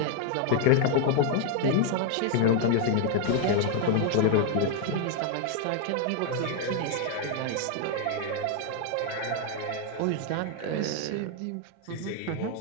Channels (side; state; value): both; different; correlation 0.00